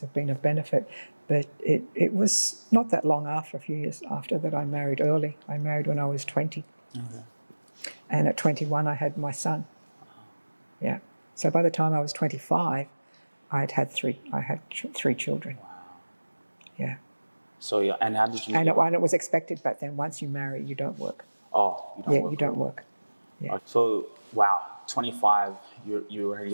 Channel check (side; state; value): both; inverted; correlation -1.00